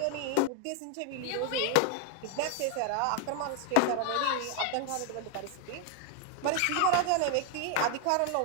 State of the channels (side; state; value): both; different; correlation 0.00